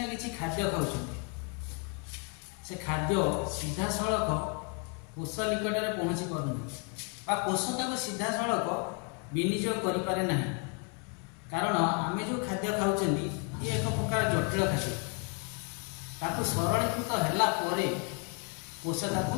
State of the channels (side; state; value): right; quieter; 36.4 dB